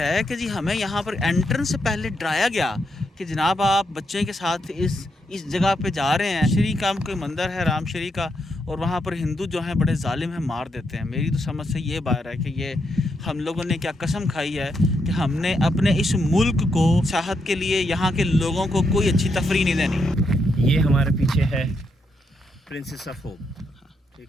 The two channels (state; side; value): normal; both; correlation 0.80